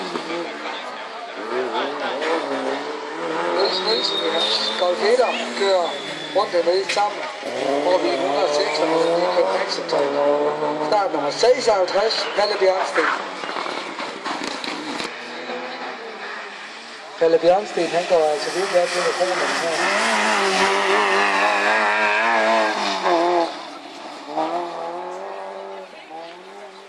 Niels Nielsen i hans Golf 1'er kører rundt med sammen over ved 106 med Michael Maxentøj. Start nummer 56, Palle Bjørnsten. Palle Bjørnsten, han går altså virkelig af til mikrofonen her.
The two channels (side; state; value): both; identical; correlation 1.00